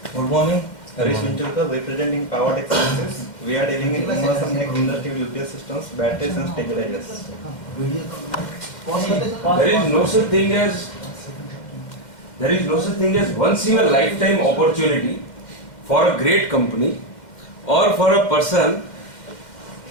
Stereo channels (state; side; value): late; right; 2.1 ms